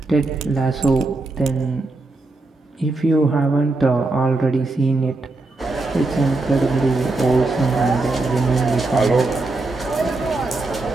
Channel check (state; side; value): quieter; left; 3.1 dB